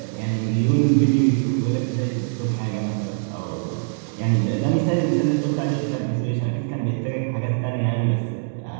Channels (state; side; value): silent; left; digital silence